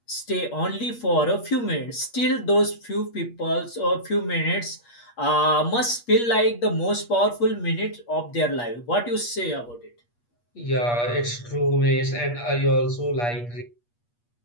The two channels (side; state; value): right; late; 8.4 ms